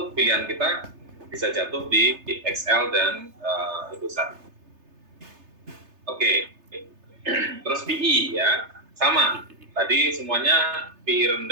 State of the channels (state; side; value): late; left; 3.3 ms